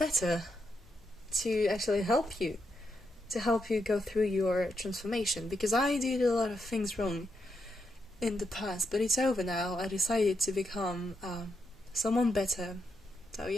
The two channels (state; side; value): normal; both; correlation 0.82